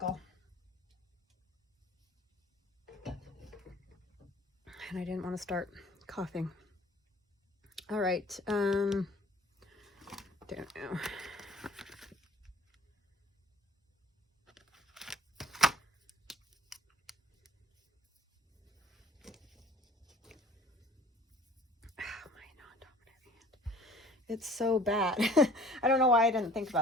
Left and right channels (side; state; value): both; normal; correlation 0.49